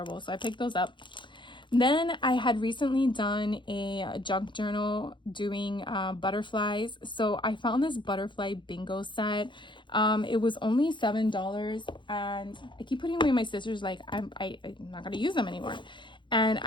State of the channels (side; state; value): right; late; 0.23 ms